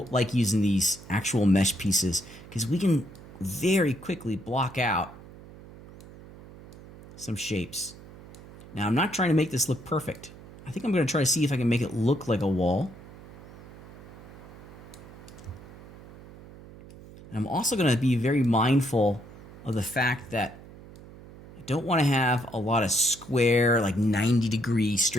like using these actual mesh pieces, because we can very quickly block out some shapes. Now, I'm not trying to make this look perfect. I think I'm going to try to see if I can make it look like a wall. I'm also going to be very mindful of the fact that I don't want to have a lot of square, like 90-degree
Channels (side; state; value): right; noise; hum, 18 dB below the sound